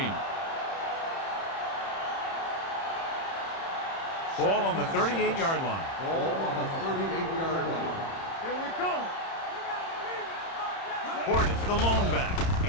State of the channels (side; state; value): right; late; 30 ms